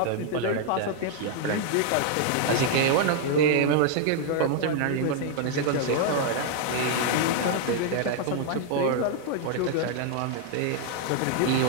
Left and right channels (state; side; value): different; both; correlation 0.00